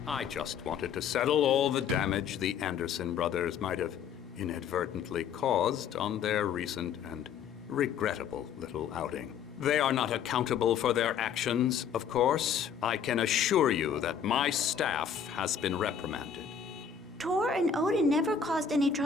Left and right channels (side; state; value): right; quieter; 7.3 dB